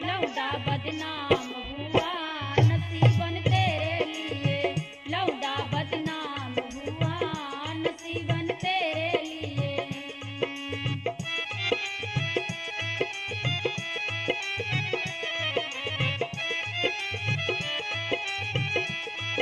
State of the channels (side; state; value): both; identical; correlation 1.00